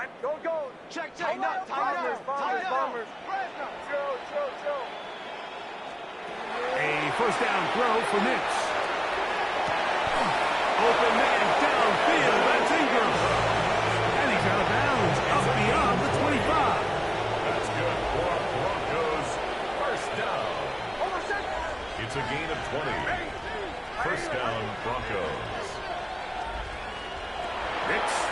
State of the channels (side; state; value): both; identical; correlation 1.00